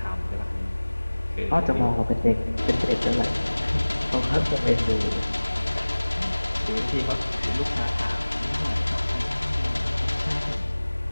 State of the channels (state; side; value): inverted; both; correlation -1.00